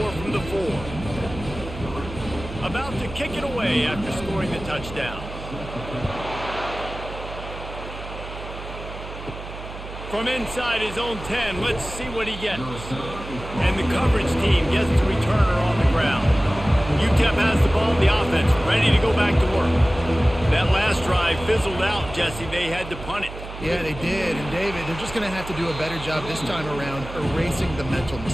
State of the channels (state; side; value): noise; right; hum, 11 dB below the sound